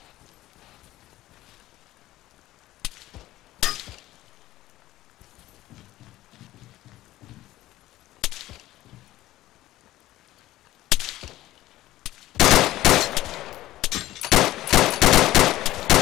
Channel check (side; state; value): right; quieter; 15.7 dB